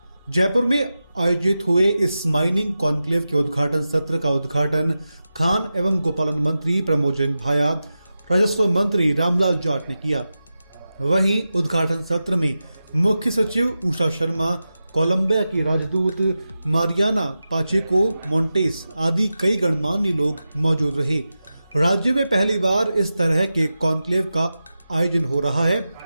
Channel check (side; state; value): both; inverted; correlation -0.93